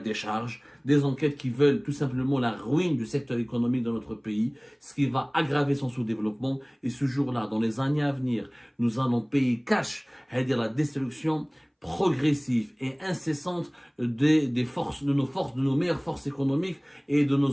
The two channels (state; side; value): identical; both; correlation 1.00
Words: des enquêtes qui veulent tout simplement la ruine du secteur économique de notre pays, ce qui va aggraver son sous-développement. Et ce jour-là, dans les années à venir, nous allons payer cash, c'est-à-dire la destruction progressive et incessante de nos meilleures forces économiques et de